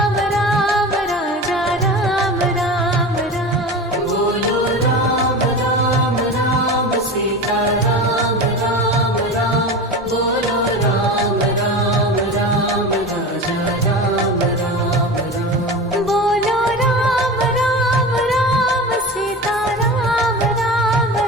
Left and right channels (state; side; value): normal; both; correlation 0.29